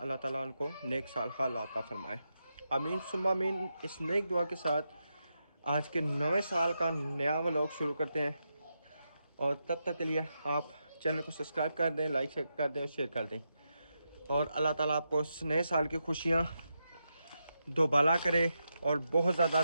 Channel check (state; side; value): inverted; both; correlation -0.86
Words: ताला उनको नेक साल हाल अता फरमाए। आमीन सुम्मा आमीन। इस नेक दुआ के साथ आज के नवे साल का नया व्लॉग शुरू करते हैं, और तब तक के लिए आप चैनल को सब्सक्राइब कर दें, लाइक कर दें और शेयर कर दें। और अल्लाह ताला आपको इस नए साल की खुशियाँ दोबाला करे और बहुत ज़्यादा